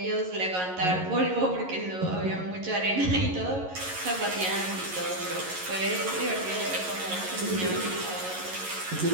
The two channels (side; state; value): left; late; 11 ms